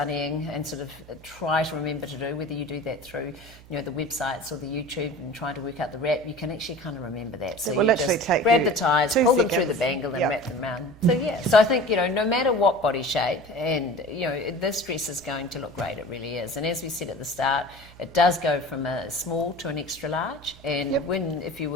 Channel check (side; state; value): right; noise; hum, 21 dB below the sound